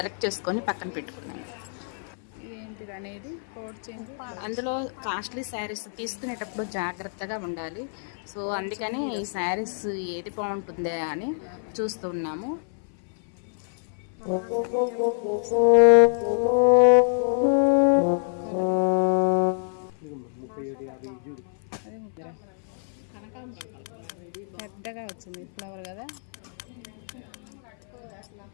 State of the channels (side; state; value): right; silent; 57 dB below the other